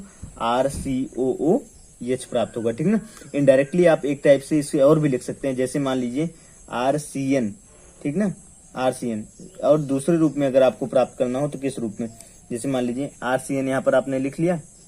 RCOOH प्राप्त होगा, ठीक ना। इनडायरेक्टली आप एक टाइप से इसे और भी लिख सकते हैं, जैसे मान लीजिए RCN, ठीक ना, RCN। और दूसरे रूप में अगर आपको प्राप्त करना हो तो किस रूप में? जैसे मान लीजिए RCN यहाँ पर आपने लिख लिया,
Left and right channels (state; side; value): identical; both; correlation 1.00